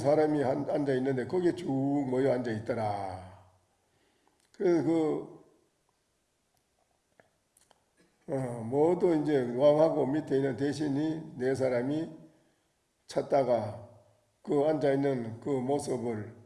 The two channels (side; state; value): both; identical; correlation 1.00